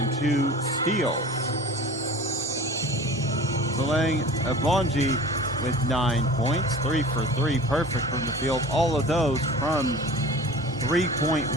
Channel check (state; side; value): normal; both; correlation 0.40